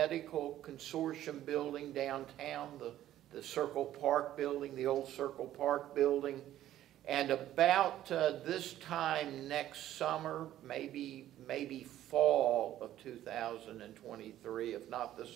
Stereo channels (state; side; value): quieter; left; 12.9 dB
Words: Consortium building downtown, the Circle Park building, the old Circle Park building. And about this time next summer, maybe fall of 2023, if not the